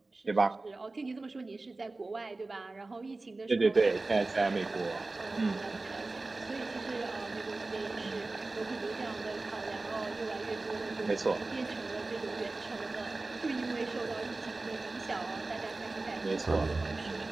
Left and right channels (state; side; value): quieter; left; 3.3 dB